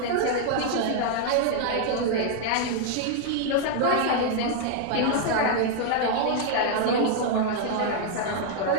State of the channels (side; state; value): both; different; correlation 0.00